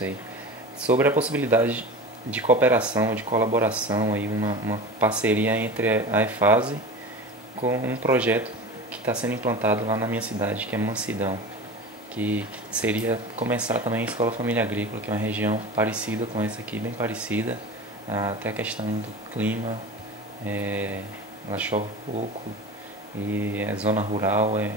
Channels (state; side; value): normal; both; correlation 0.32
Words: Sobre a possibilidade de cooperação, de colaboração, aí uma parceria entre a EFASE com um projeto que está sendo implantado lá na minha cidade, que é Mansidão, que seria começar também a Escola Família Agrícola, que é uma região parecida com essa aqui, bem parecida, até a questão do clima, ela chove pouco, e é zona rural,